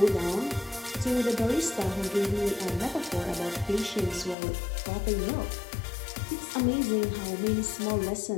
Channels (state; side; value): drops out; right; at 4.4 s